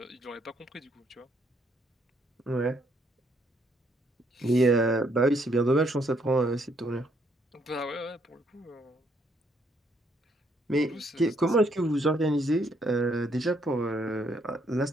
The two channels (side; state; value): both; normal; correlation 0.71